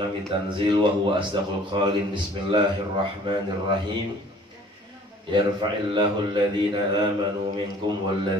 tanzil wa huwa asdaqul qailin. Bismillahirrahmanirrahim. Yarfa'illahu alladhina amanu minkum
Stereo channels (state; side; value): normal; both; correlation 0.52